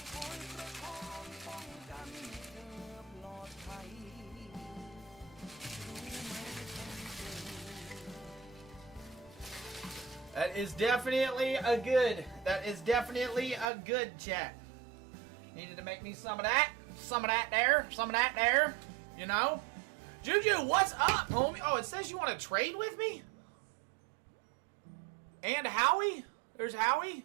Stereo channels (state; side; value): drops out; left; at 13.7 s